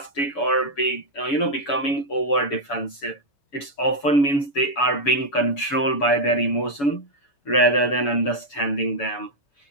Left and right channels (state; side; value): late; right; 7.0 ms